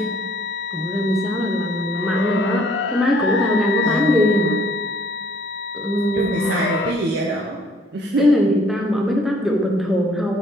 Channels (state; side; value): normal; both; correlation 0.61